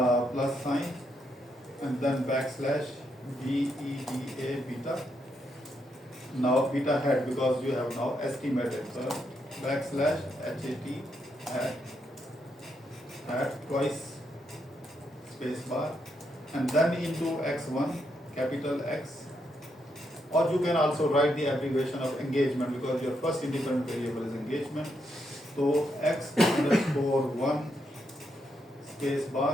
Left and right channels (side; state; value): both; normal; correlation 0.79